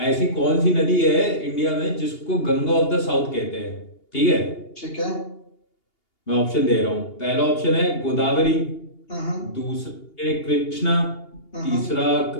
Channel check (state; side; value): late; right; 2.8 ms